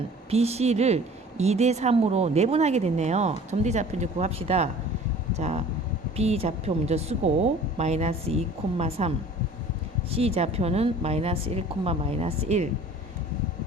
BC를 2대 3으로 내분하게 됐네요. 점 D 좌표 이제 구합시다. 자, B 좌표 먼저 쓰고 마이너스 2,3 C 좌표는 마이너스 1, 마이너스 1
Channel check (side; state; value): both; normal; correlation 0.47